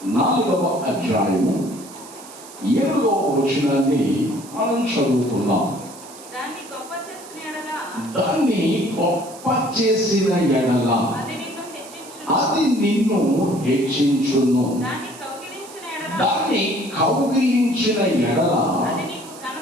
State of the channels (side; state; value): right; noise; hiss, 18 dB below the sound